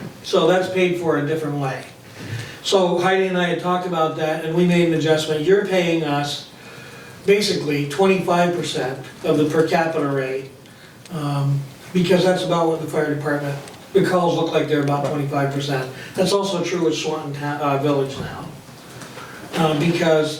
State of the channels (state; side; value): identical; both; correlation 1.00